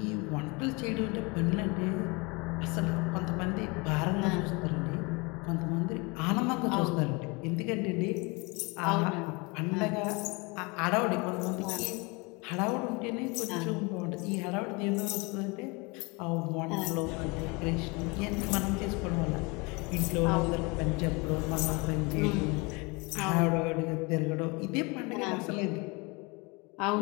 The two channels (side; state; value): right; quieter; 27.7 dB